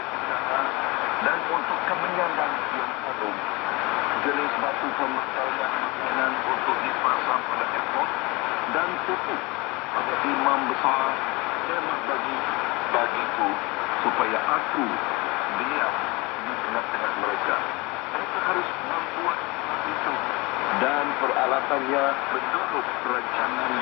usaha, dan untuk kemenyan yang harum, jenis batu pembakar makanan untuk dipasang pada efod, dan tutup pada imam besar kemah bagiku, supaya aku diam di tengah-tengah mereka. Mereka harus membuat itu, dan peralatannya menurut perancangan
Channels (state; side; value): quieter; right; 25.2 dB